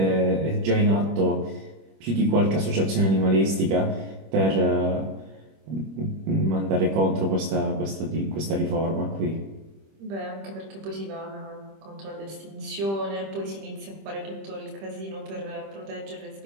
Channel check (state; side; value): late; left; 25 ms